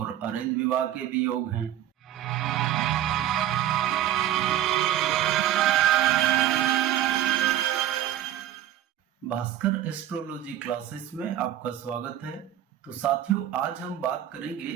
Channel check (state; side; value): quieter; left; 12.1 dB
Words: अरेंज विवाह के भी योग हैं। भास्कर एस्ट्रोलॉजी क्लासेस में आपका स्वागत है। तो साथियों, आज हम बात करेंगे